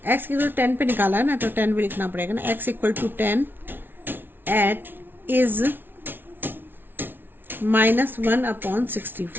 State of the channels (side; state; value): left; late; 0.10 ms